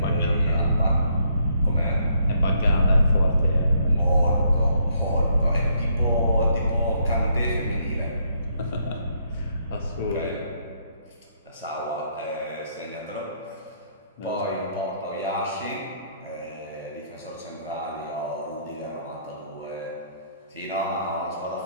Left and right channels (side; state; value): both; inverted; correlation -0.71